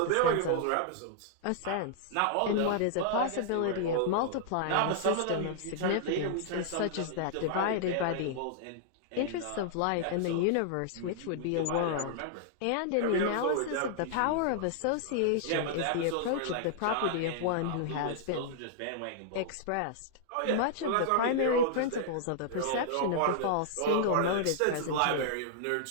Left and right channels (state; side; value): different; both; correlation -0.01